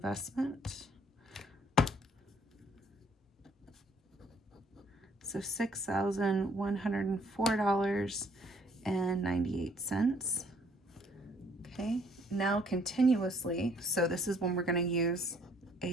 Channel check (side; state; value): both; normal; correlation 0.63